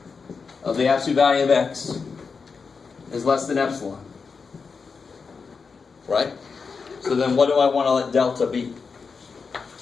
of x is less than epsilon. Right? So then what do I want to let delta be?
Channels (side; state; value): right; quieter; 5.1 dB